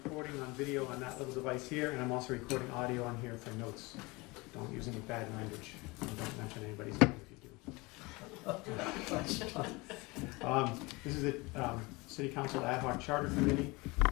on video on that little device here, and I'm also recording audio on here for notes. Don't use any bad language, and don't mention anybody's name if you do. This is the City Council Ad Hoc Charter Committee.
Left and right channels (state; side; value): quieter; right; 24.6 dB